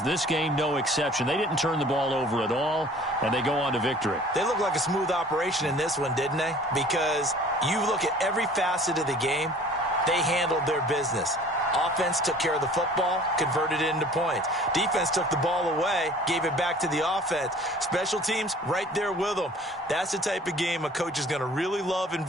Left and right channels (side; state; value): both; normal; correlation 0.49